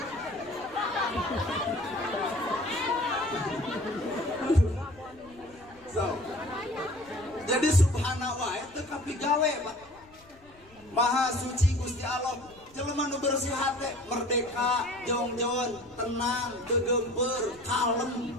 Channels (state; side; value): noise; left; rumble, 26 dB below the sound